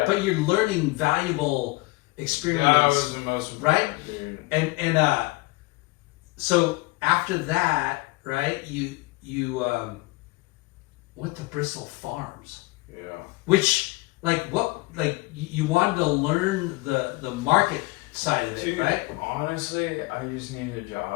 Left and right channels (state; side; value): quieter; right; 23.3 dB